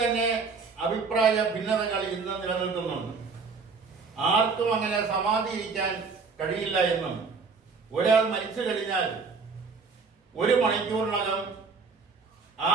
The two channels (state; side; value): quieter; left; 4.8 dB